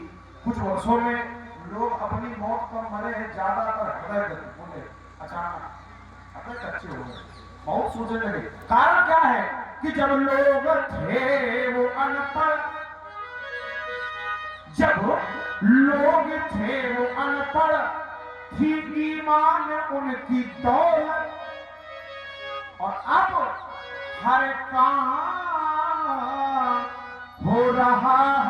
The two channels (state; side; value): identical; both; correlation 1.00